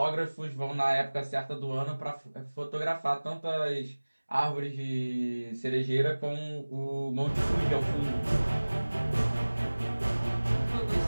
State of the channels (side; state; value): both; inverted; correlation -1.00